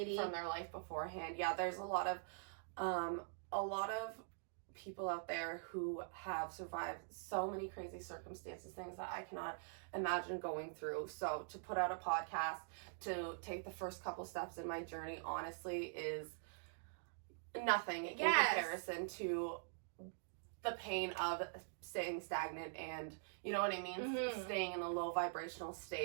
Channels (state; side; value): silent; left; digital silence